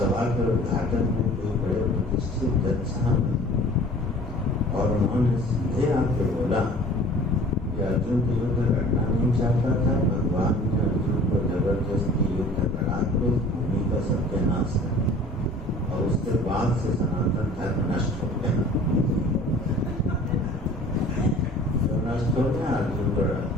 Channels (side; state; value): both; normal; correlation 0.47